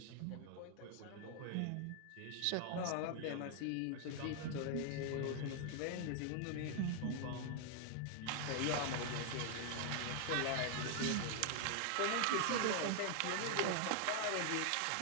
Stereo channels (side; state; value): both; different; correlation 0.00